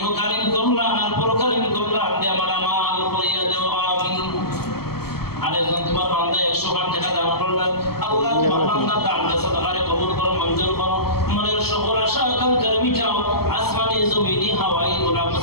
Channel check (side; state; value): right; late; 0.95 ms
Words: কল্যাণ আর পরকালীন কল্যাণ দিয়ে আমার আমাল করিয়া দেও আমিন। আরেকজন তোমার বান্দা 100 টাকা দান করলেন আল্লাহ তোমার বান্দা দান দিয়ে সাদাকারে কবুল করো মঞ্জুর করো মনের সকল আশা আকাঙ্ক্ষা মিটাও আসমানি জমিনি হাওয়াই গুনাহ